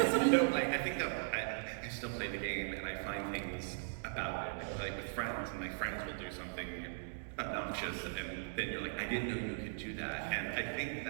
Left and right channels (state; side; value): silent; left; digital silence